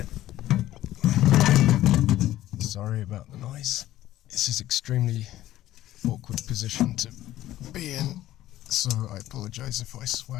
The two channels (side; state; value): right; quieter; 14.2 dB